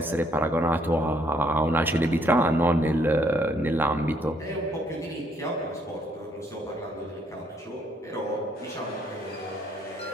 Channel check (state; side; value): normal; both; correlation 0.68